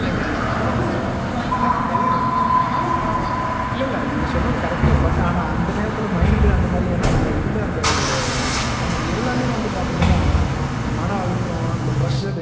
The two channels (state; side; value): identical; both; correlation 1.00